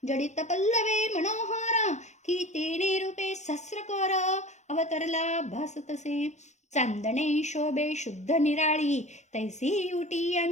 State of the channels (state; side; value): late; right; 0.34 ms